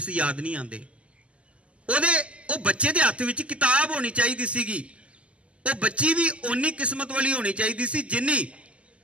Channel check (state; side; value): late; left; 0.058 ms